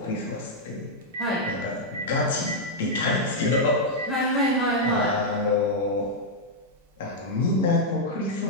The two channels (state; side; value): normal; both; correlation -0.04